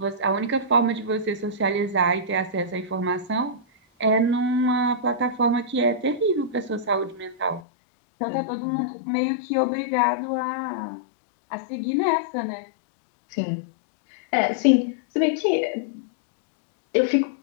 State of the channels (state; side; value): drops out; right; at 7.6 s